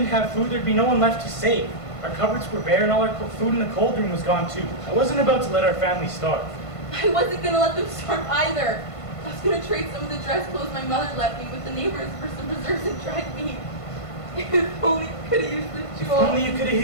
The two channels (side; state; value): right; late; 1.5 ms